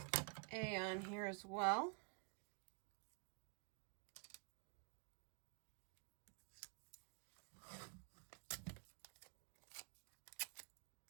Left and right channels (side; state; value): left; quieter; 38.9 dB